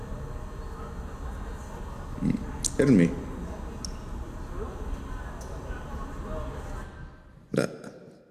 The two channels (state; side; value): identical; both; correlation 1.00